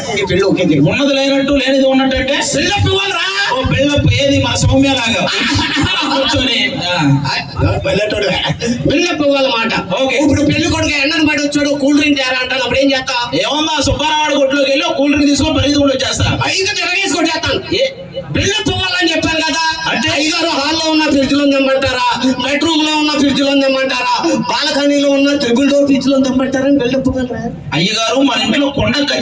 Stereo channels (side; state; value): both; identical; correlation 1.00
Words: పెళ్లి ఓకే ఉన్నది లేనట్టు లేనిది ఉన్నట్టు అంటే పెళ్ళప్పు ఇవ్వాలరా. ఓ పెళ్ళప్పు ఏది మన సౌమ్య లాగా కూర్చొని పెళ్ళప్పు ఇవ్వాలన్నమాట. ఓకే ఇప్పుడు పెళ్లి కొడుకు ఎండను పడి వచ్చాడు కూల్ డ్రింక్ తేరా అంటాను. అప్పుడు ఏం చేస్తా? ఏమన్నా సుబ్బారావాడి కొట్లోకి వెళ్ళి కూల్ డ్రింక్ తీసుకొని పరిగెత్తుకుంటూ వచ్చేస్తా. ఇంకా తిరగేసుకొని చేస్తాను. పెళ్ళప్పు ఇవ్వాలని చెప్పాను కదా. అంటే ఐదారు హాల్లో ఉన్న ఫ్రిడ్జ్ లో తెమ్మంటారా, బెడ్రూమ్ లో ఉన్న ఫ్రిడ్జ్ లో తెమ్మంటారా, బాల్కనీలో ఉన్న ట్రిపుల్ డోర్ ఫ్రిడ్జ్ లో తెమ్మంటారా? పెళ్ళప్పు అయ్యగారు మన ఇంట్లో కొండ